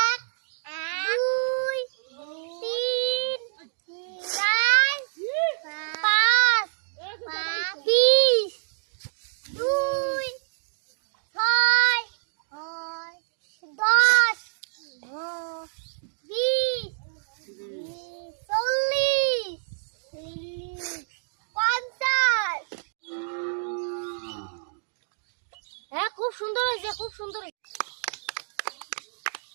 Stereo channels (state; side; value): silent; left; digital silence